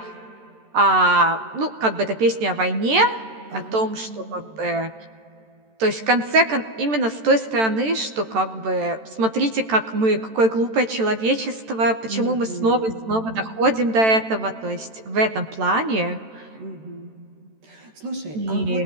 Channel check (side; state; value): left; late; 13 ms